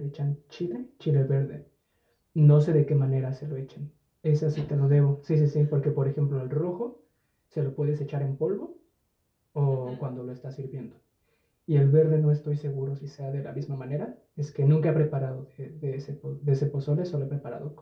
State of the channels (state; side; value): identical; both; correlation 1.00